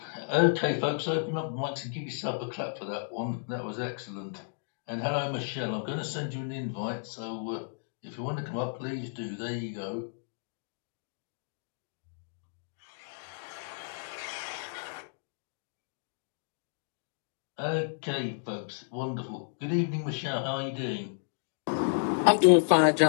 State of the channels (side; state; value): right; silent; digital silence